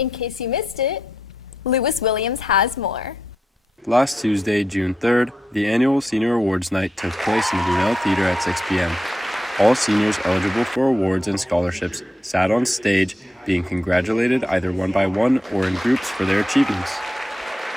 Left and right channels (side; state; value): both; normal; correlation 0.84